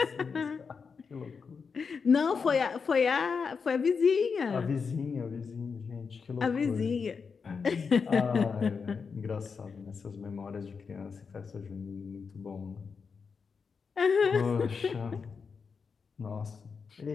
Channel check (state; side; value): quieter; right; 5.5 dB